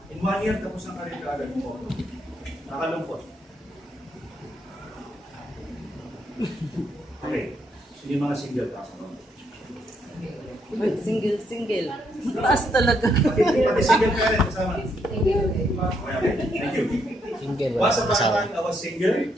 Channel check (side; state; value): both; normal; correlation 0.75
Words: in 1 year, tapos ang karir kaagad mo. Nakalungkot. Okay, so yung mga single kasi no? Single. Mataas talaga. Pati single ka rin, kasama. Okay, thank you. Single. Once upon a time, I was single.